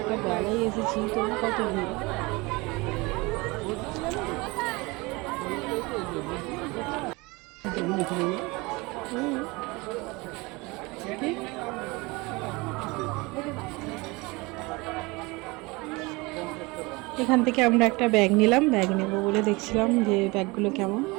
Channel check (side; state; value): left; quieter; 24.5 dB